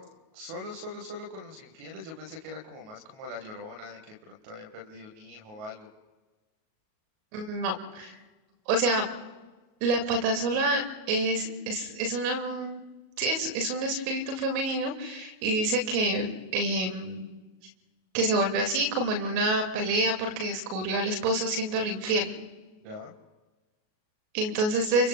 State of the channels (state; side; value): late; left; 37 ms